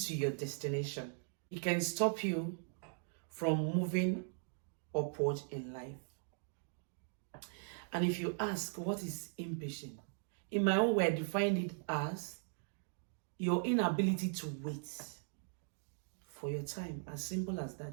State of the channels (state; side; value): silent; left; digital silence